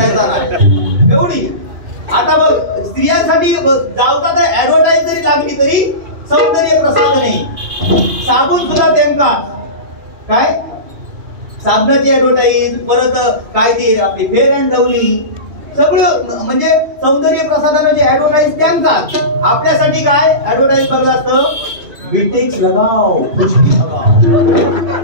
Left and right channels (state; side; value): late; left; 2.3 ms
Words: नाही एवढी. आता बघ स्त्रियांसाठी जावता तर ऍडव्हर्टाईज जरी लागली तरी सौंदर्य प्रसाधन नाही. साबून सुद्धा त्यांका काय साबणाची ऍडव्हर्टाईज, परत काय ती आपली फेअर अँड लवली, सगळं म्हणजे सौंदर्य प्रसाधनाची ऍडव्हर्टाईज त्यांकाच. आपल्यासाठी काय ऍडव्हर्टाईज बघलं असतं विटेक्स लगाओ खुशकी लगाओ,